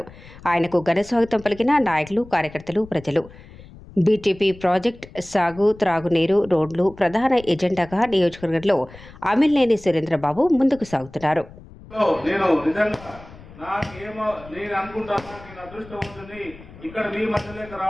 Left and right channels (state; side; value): noise; left; rumble, 19 dB below the sound